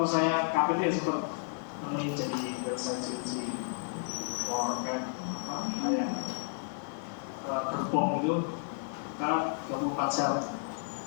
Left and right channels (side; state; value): right; silent; 56 dB below the other